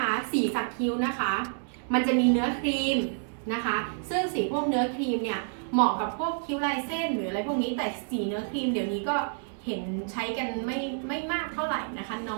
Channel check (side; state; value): left; silent; 59 dB below the other